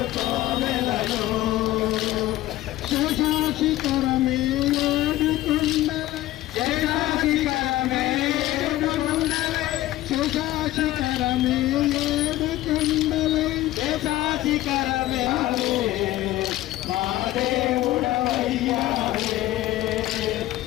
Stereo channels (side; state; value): right; quieter; 15.8 dB